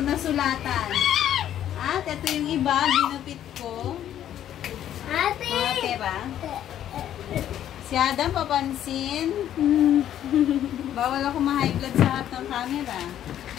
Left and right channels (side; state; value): right; quieter; 11.1 dB